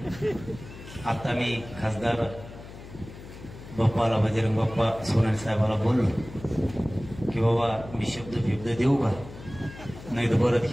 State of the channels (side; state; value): left; noise; hum, 15 dB below the sound